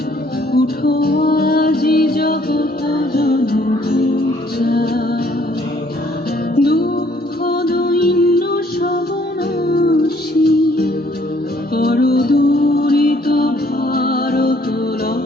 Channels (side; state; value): both; normal; correlation 0.63